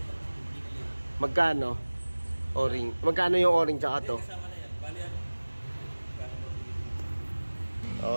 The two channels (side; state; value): both; inverted; correlation -1.00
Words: magkano? O-ring. Magkano yung o-ring tsaka to? Kasama na yan. Bali ano?